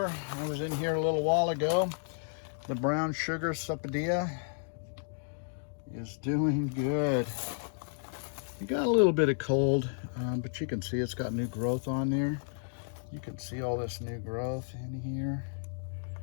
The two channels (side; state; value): right; silent; digital silence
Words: I was in here a little while ago. The brown sugar sapodia is doing good. It got a little bit of cold, but you can see it's got new growth on there. You can see all this new growth in here.